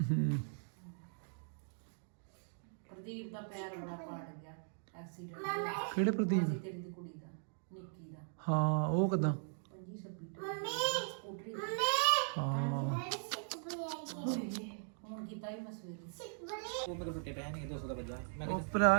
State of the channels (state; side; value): silent; left; digital silence